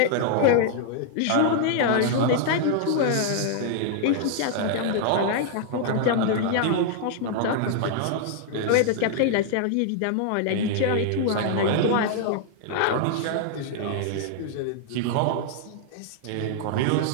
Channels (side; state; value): both; different; correlation -0.01